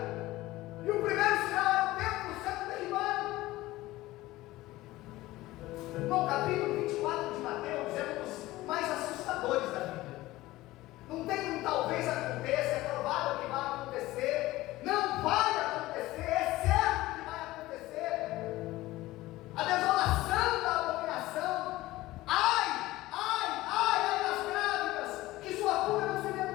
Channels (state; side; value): quieter; right; 17.7 dB